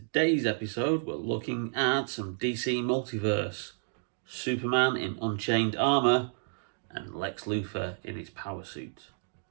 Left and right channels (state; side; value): silent; left; digital silence